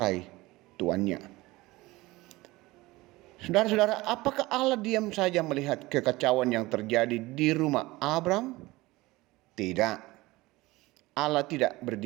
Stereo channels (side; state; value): left; quieter; 20.2 dB